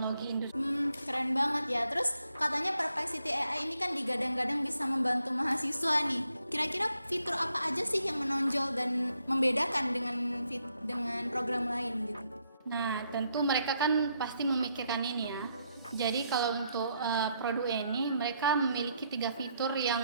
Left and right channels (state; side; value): inverted; both; correlation -0.75